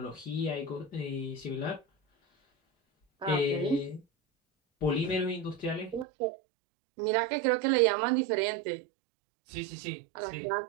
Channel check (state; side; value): drops out; left; at 6.1 s